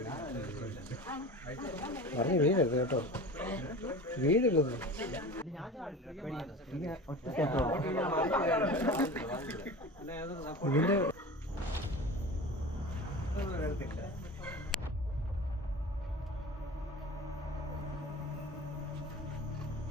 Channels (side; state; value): both; normal; correlation 0.34